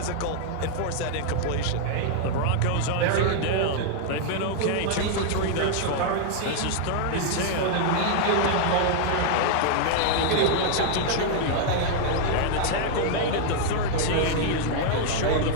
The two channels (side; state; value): both; different; correlation 0.00